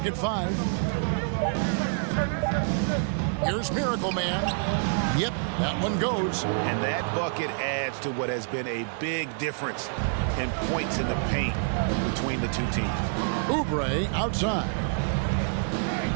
at 5. Here's Miracle Man. Yep, that one goes. And that bucket adds to what has been a big difference in points in the paint between the two teams. Oubre outside.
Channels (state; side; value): silent; left; 60 dB below the other